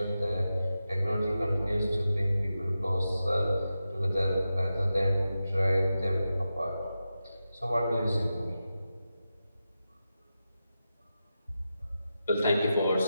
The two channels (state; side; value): inverted; both; correlation -0.91